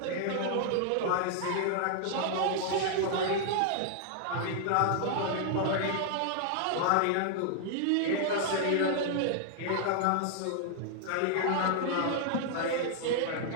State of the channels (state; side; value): different; both; correlation -0.01